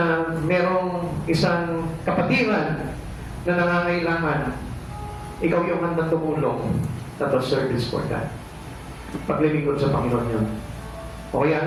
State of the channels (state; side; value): identical; both; correlation 1.00